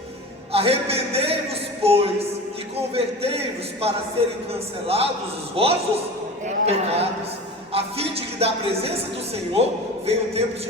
Arrependei-vos, pois, e convertei-vos para serem cancelados os vossos pecados, a fim de que da presença do Senhor venham tempos de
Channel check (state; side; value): normal; both; correlation 0.34